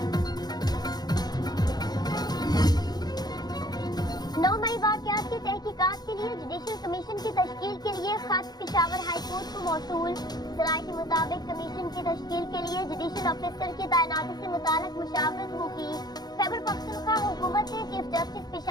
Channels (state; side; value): late; right; 0.19 ms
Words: 9 मई वाक़यात की तहकीकात के लिए जुडिशल कमीशन की तश्कील के लिए खत पेशावर हाई कोर्ट को मौसूल। सराय के मुताबिक कमीशन की तश्कील के लिए जुडिशल ऑफिसर की तैनाती से मुताल्लिक़ मुशावरत होगी। खैबर पख्तूनख्वा हुकूमत ने chief justice